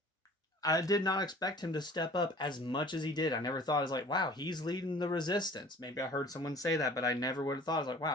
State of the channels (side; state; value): both; normal; correlation 0.48